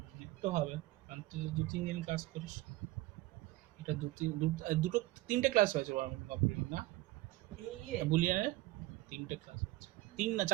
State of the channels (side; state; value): left; quieter; 18.5 dB